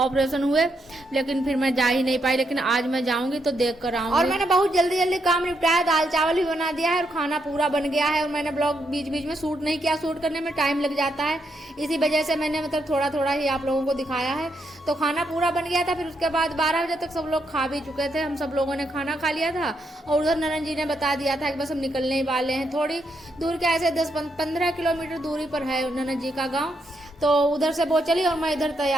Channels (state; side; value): normal; both; correlation 0.78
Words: हुए, लेकिन फिर मैं जा ही नहीं पाई। लेकिन आज मैं जाऊंगी तो देख कर आऊंगी। और मैंने बहुत जल्दी जल्दी काम निपटाया, दाल चावल भी बना दिया है और खाना पूरा बन गया है। और मैंने ब्लॉग बीच बीच में शूट नहीं किया, शूट करने में टाइम लग जाता है, इसी वजह से मैंने मतलब थोड़ा थोड़ा ही आप लोगों को दिखाया है। तो खाना पूरा बन गया था। फिर उसके बाद 12 बजे तक सब लोग खा भी चुके थे, हम सब लोगों ने खाना खा लिया था। और उधर ननद जी ने बता दिया था कि बस हम निकलने ही वाले हैं, थोड़ी दूर के ऐसे 10-15 किलोमीटर दूरी पर है ननद जी का गाँव। तो उधर से वो चली और मैं इधर